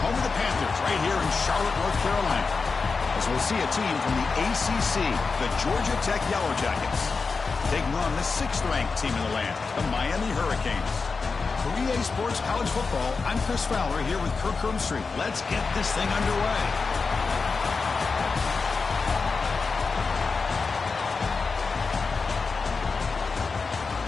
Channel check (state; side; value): quieter; right; 4.6 dB